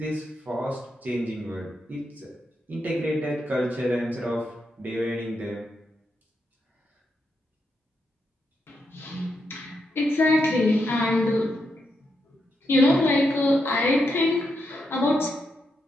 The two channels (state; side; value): normal; both; correlation 0.83